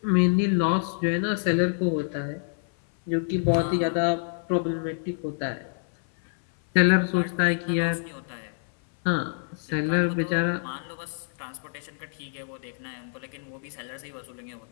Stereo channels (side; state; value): right; silent; 58 dB below the other